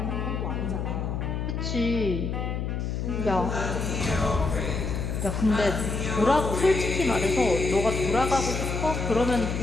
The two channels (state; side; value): noise; left; hum, 2 dB below the sound